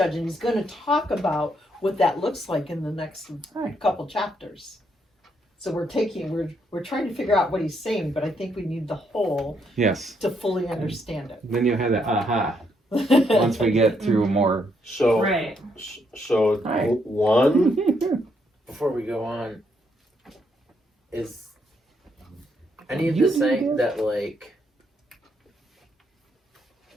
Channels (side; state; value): both; normal; correlation 0.75